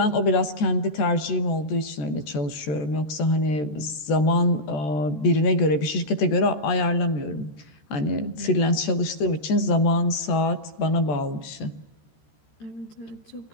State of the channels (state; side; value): late; right; 13 ms